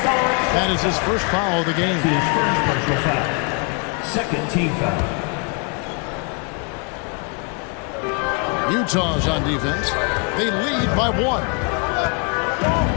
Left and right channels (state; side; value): quieter; right; 34.8 dB